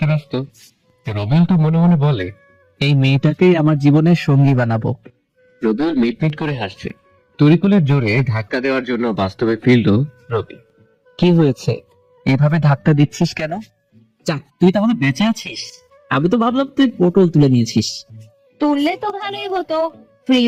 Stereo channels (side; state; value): both; identical; correlation 1.00